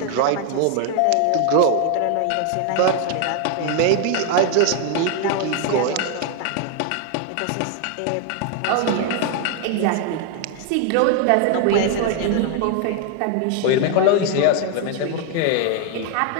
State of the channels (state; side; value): different; both; correlation 0.00